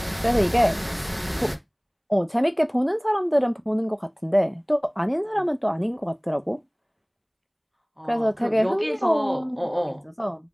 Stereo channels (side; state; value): both; identical; correlation 1.00